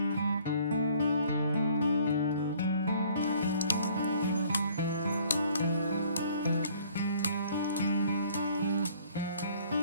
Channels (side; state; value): both; inverted; correlation -0.58